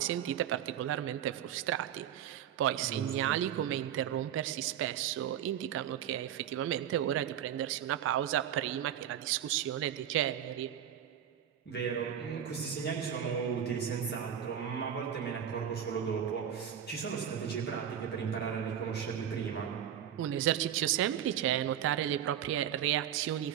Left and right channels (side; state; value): left; quieter; 9.8 dB